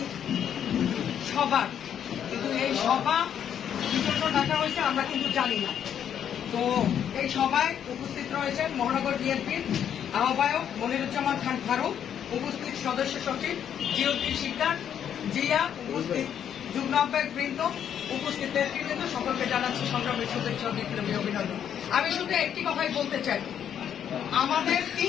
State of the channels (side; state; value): right; quieter; 9.1 dB